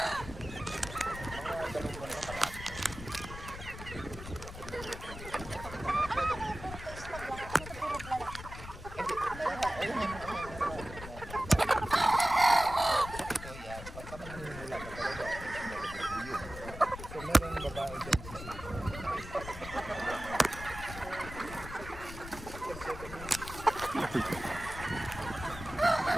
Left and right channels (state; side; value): noise; left; rumble, 11 dB below the sound